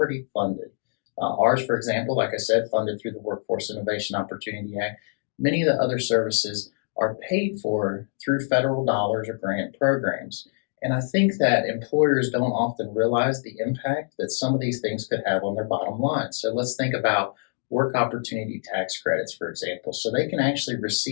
funded. Ours, for example, like I said, funded through the Workforce Innovation Opportunity Act. Many of the other services are paid for through federal dollars or grant programs. And I think that employers don't often realize the impact that some of these things could have on their bottom line. So let's think about work opportunity tax credits, for example. So they can actually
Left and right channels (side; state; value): right; silent; 62 dB below the other